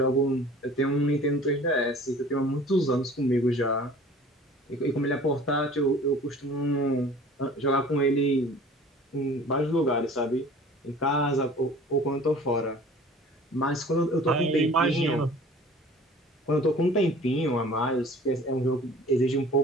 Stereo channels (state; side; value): normal; both; correlation 0.47